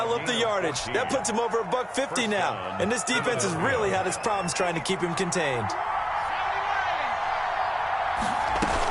up the yardage. That puts him over $150 now. And this defense has really had its problems trying to keep him contained.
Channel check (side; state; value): both; identical; correlation 1.00